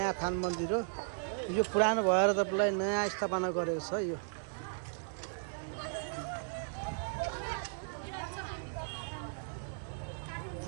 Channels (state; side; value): silent; left; digital silence